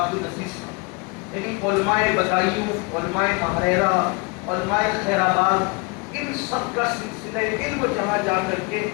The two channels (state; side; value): quieter; right; 29.2 dB